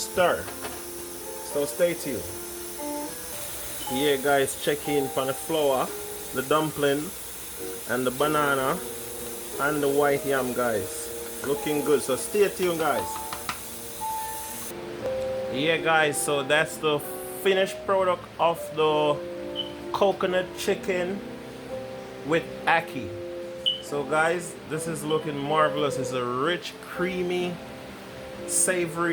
So stay tuned. Yeah, guys, check in for the flour, the dumpling, and the banana, and the white yam, guys. Looking good. So stay tuned, guys. Yeah, guys, so that's the finished product of the coconut chicken with ackee. So guys, this is looking marvelous. It's a rich, creamy,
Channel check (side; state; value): both; identical; correlation 1.00